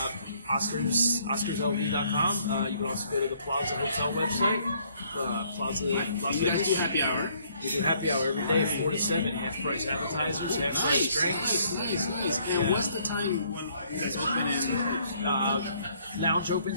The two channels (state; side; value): inverted; both; correlation -0.65